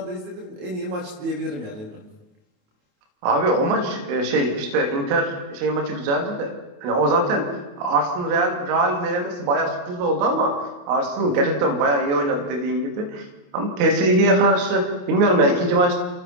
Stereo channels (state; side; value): late; left; 28 ms